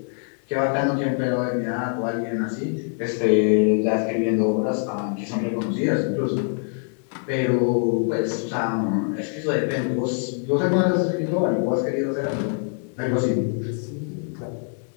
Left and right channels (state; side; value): silent; right; 55 dB below the other